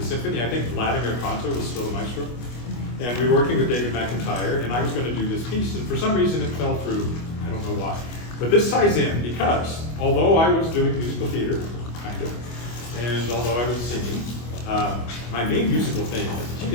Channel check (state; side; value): late; right; 25 ms